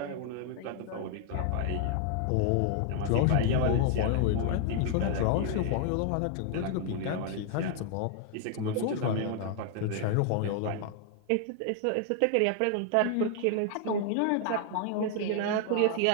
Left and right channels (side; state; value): both; different; correlation 0.00